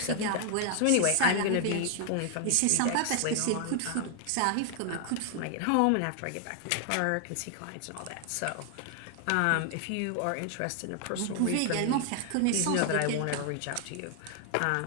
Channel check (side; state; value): both; different; correlation 0.00